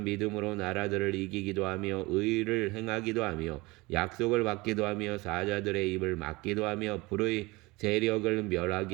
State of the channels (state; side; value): quieter; left; 22.9 dB